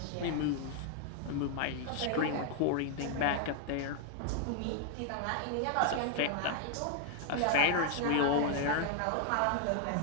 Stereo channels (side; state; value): both; different; correlation 0.00